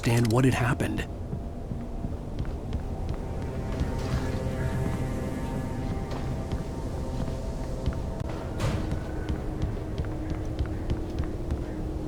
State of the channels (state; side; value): identical; both; correlation 1.00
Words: what had happened.